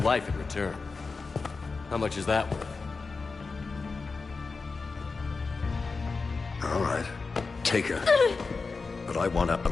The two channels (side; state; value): right; quieter; 4.3 dB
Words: in return. How much is that worth? All right. Take her. But I want her